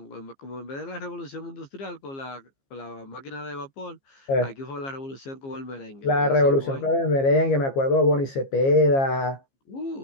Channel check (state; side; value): late; right; 15 ms